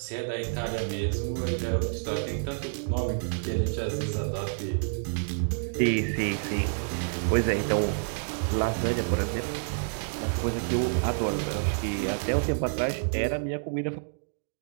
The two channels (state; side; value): silent; left; digital silence